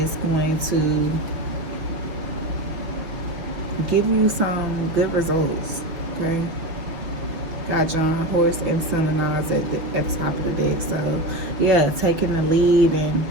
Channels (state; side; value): late; left; 6.0 ms